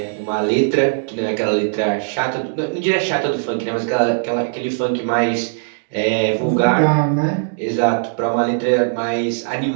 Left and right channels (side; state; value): left; silent; digital silence